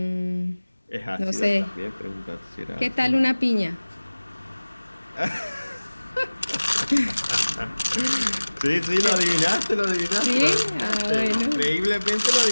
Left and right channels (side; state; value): both; inverted; correlation -1.00